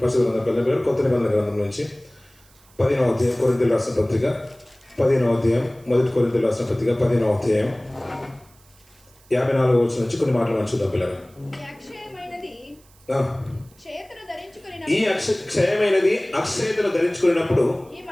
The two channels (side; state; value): right; noise; hiss, 29 dB below the sound